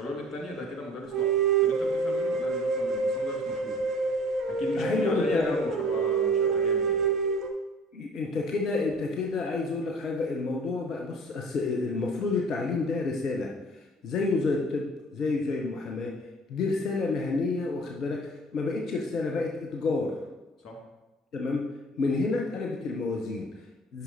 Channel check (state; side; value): normal; both; correlation 0.49